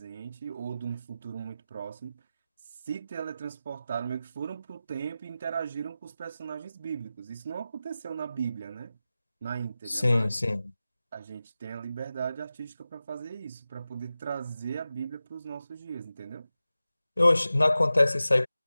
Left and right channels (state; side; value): inverted; both; correlation -0.93